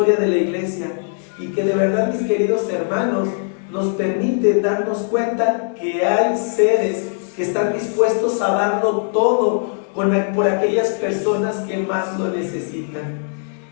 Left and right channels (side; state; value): right; silent; 66 dB below the other